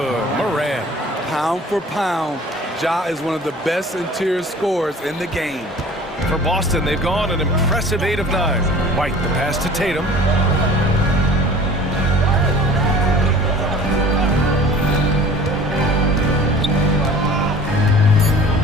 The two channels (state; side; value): normal; both; correlation 0.45